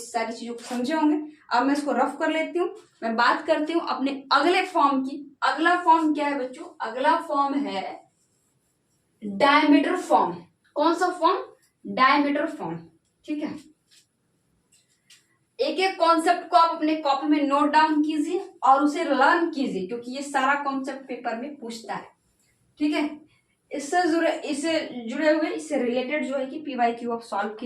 सारी चीजों को समझे होंगे। अब मैं इसको रफ कर लेती हूँ, मैं बात करती हूँ अपने अगले फॉर्म की। अगला फॉर्म क्या है बच्चों, अगला फॉर्म है डायमीटर फॉर्म। कौन सा फॉर्म, डायमीटर फॉर्म। ठीक है, एक एक कॉन्सेप्ट को आप अपने कॉपी में नोट डाउन कीजिए और उसे लर्न कीजिए, क्योंकि ये सारा कॉन्सेप्ट पेपर में पूछता है। ठीक है, इससे जुड़े हुए, इससे रिलेटेड जो है कि PYQ आप सॉल्व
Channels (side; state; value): both; identical; correlation 1.00